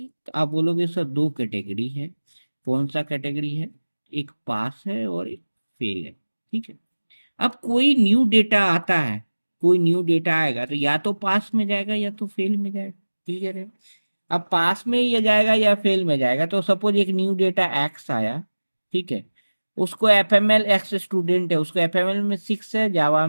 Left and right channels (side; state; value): both; inverted; correlation -1.00